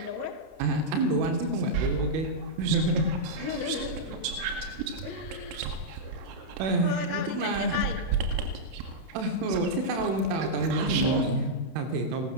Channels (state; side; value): late; left; 31 ms